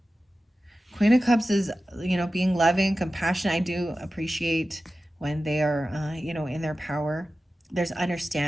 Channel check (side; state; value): both; normal; correlation 0.94